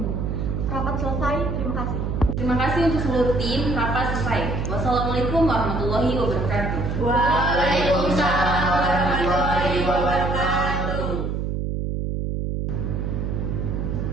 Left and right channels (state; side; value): noise; right; hum, 1 dB below the sound